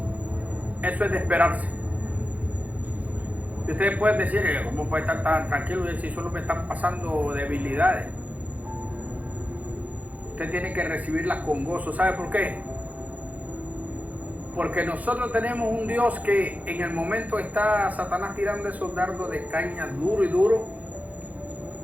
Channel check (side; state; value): left; late; 0.075 ms